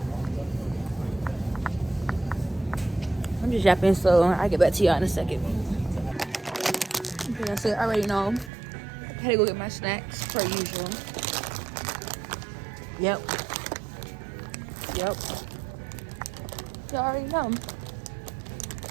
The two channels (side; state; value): left; drops out; at 8.5 s